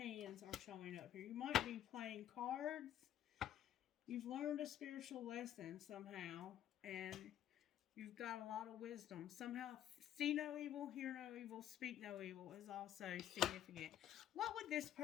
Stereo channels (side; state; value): right; quieter; 11.0 dB